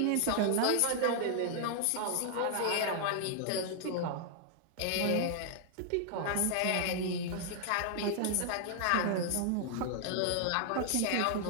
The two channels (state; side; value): different; both; correlation -0.01